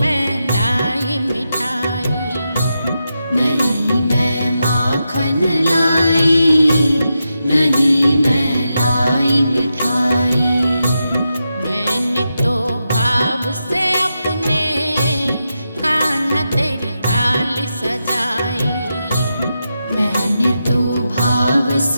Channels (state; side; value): inverted; both; correlation -0.88